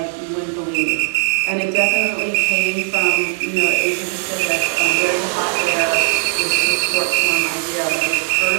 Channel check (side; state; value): left; silent; 65 dB below the other